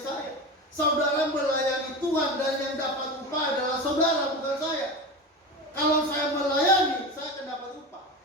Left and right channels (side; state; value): both; normal; correlation 0.25